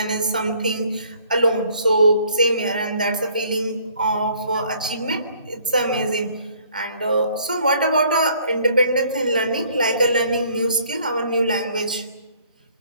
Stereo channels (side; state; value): both; inverted; correlation -0.60